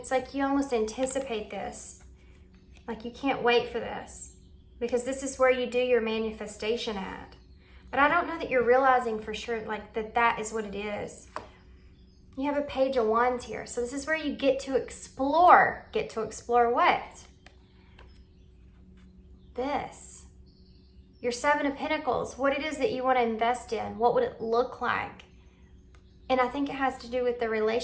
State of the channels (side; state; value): both; identical; correlation 1.00